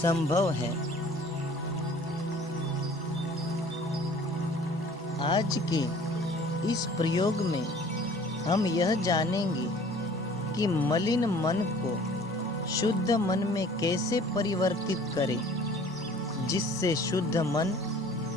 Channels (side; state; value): both; normal; correlation 0.50